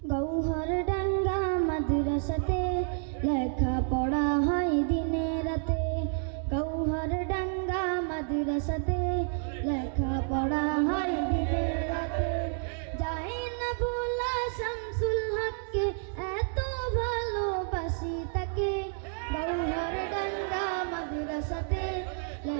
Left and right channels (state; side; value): silent; left; 58 dB below the other